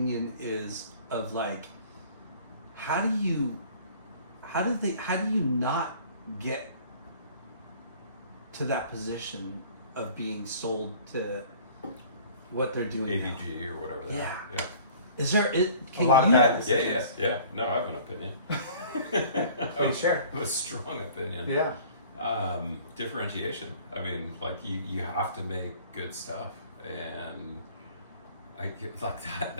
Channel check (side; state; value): both; inverted; correlation -0.50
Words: is of, like, how do you not get to that position of being sold to what they're doing now? AVG or whatever. They Yeah. are. Yeah. Is there can A lot of you, bad Yeah. No, I have an opinion. Please share. A strong opinion. Yeah. Differentiation. I mean, like you have to make good stuff, and I get like